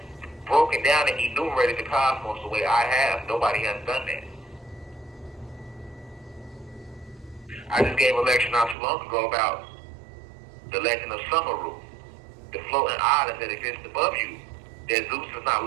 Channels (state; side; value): drops out; left; at 8.8 s